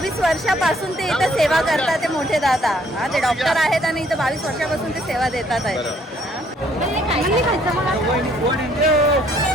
वर्षापासून ते इथं सेवा करतात. ते मोठे दादा, हा, ते डॉक्टर आहेत आणि इथं 22 वर्षापासून ते सेवा देतात आहेत.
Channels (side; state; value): both; normal; correlation 0.64